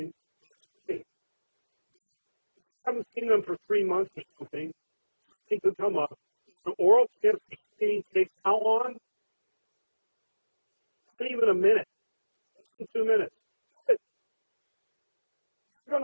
Hey, I haven't seen them for 3 months or something. They could come up. The oral cancer screening takes how long? Not even a minute. 2 minutes. You're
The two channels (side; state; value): both; inverted; correlation -1.00